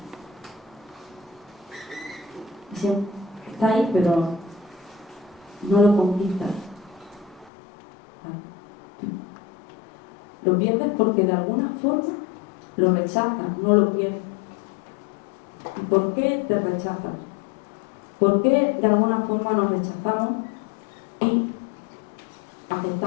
está ahí, pero no lo conquistas. Lo pierdes porque de alguna forma lo rechazas, no lo pierdes. ¿Y por qué te rechazas? ¿Por qué de alguna forma nos rechazamos y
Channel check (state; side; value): drops out; right; at 7.5 s